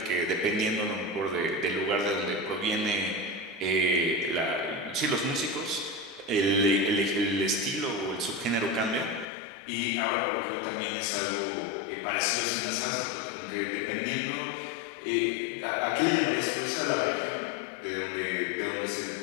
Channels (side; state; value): right; drops out; at 9.2 s